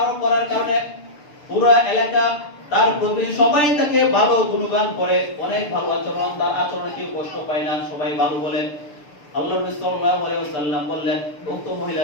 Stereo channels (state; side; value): late; right; 6.8 ms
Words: করার কারণে পুরো এলাকা তার প্রতি সবাই তাকে ভালো গুণগান করে, অনেক ভালো আচরণ, তার আচরণে কেউ কষ্ট পায় না, সবাই ভালো বলে। আল্লাহর নবী সাল্লাল্লাহু আলাইহি ওয়াসাল্লাম বললেন উক্ত মহিলা